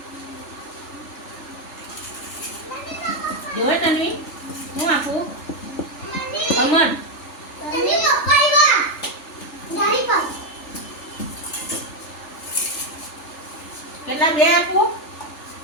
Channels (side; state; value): right; late; 3.4 ms